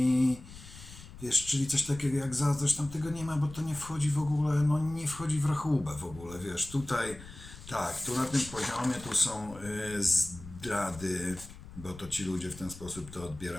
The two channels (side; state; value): left; noise; rumble, 16 dB below the sound